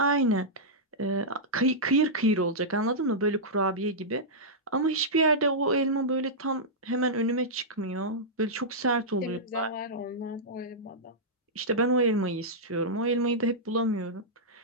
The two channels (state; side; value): normal; both; correlation -0.11